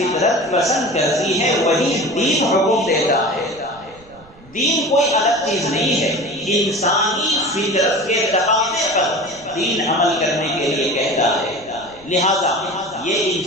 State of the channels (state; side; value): noise; right; rumble, 25 dB below the sound